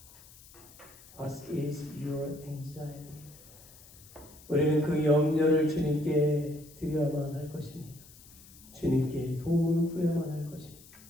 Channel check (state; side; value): noise; left; hiss, 22 dB below the sound